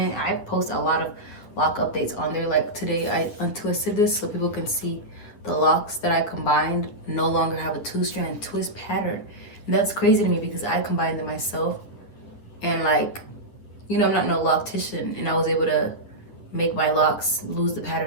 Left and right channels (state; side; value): late; right; 9.9 ms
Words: I post a lot of lock updates on there. Like today I untwisted this so people can see the locks that I combined no longer have a 2-strand twist pattern. And that's crazy to me because I combined them myself, and like, you know, I'm not no loctitian, and I was able to make my locks lose the